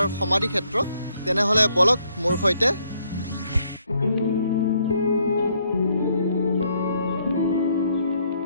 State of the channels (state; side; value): inverted; both; correlation -0.70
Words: সমাধি ক্ষেত্ৰ। তেনেহ'লে বলক মোৰ সৈতে।